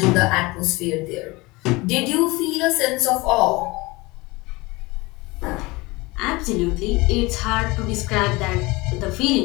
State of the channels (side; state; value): right; quieter; 22.9 dB